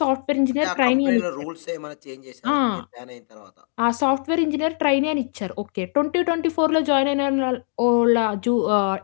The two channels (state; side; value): silent; right; digital silence